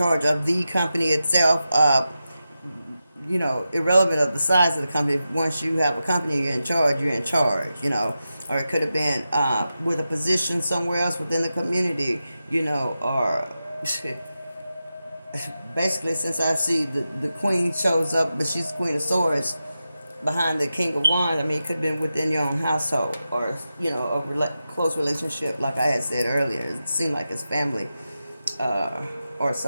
of the company itself. Irrelevant of the size of the company. Once you have a company, you're in charge. You're in charge. Or it could have been with a position somewhere else within the community. Or basically, since I see the Queen shows up, but she's Queen of Swords behind the King of Wands. I mean, it could have been within your own household, or close relationship, like I had said earlier. It seemed like it's family, or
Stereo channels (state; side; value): inverted; both; correlation -0.91